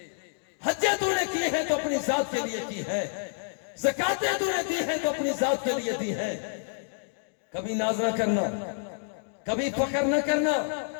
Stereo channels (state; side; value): silent; right; digital silence